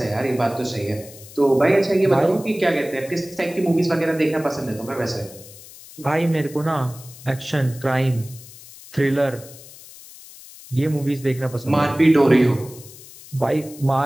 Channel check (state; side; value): noise; left; hiss, 19 dB below the sound